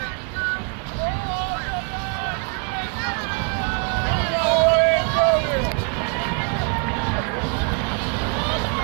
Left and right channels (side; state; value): left; quieter; 35.6 dB